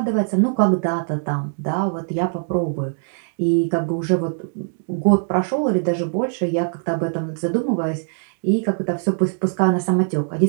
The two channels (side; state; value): left; silent; digital silence